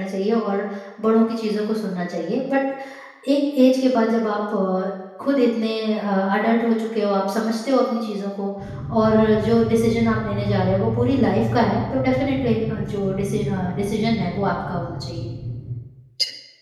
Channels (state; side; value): identical; both; correlation 1.00